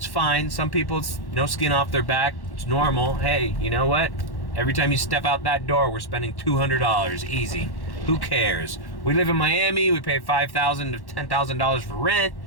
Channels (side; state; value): right; late; 1.1 ms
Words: fine. Some people, it's no skin off their back. It's normal. Hey, you know what? Every time you step out that door, we're spending $200 easy. Who cares? We live in Miami. We pay $5,000 to $10,000 for rent.